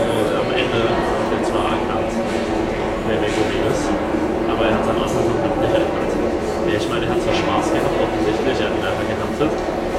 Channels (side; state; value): both; identical; correlation 1.00